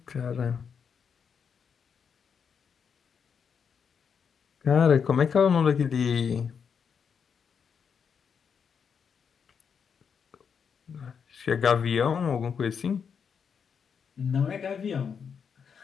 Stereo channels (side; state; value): right; quieter; 6.7 dB